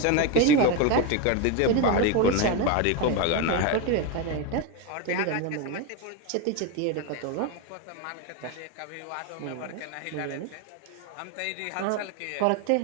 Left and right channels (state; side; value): different; both; correlation 0.03